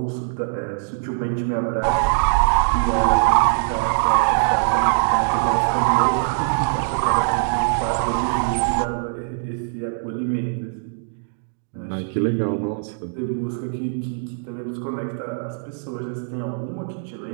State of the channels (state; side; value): silent; left; digital silence